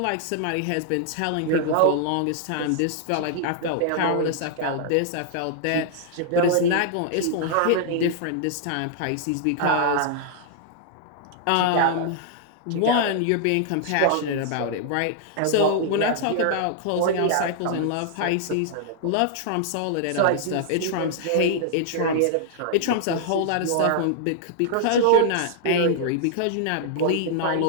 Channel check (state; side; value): different; both; correlation -0.01